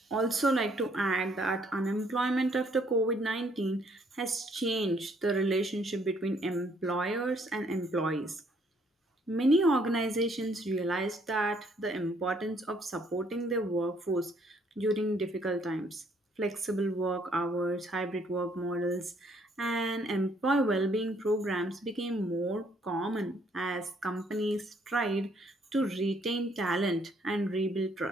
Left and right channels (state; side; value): normal; both; correlation 0.66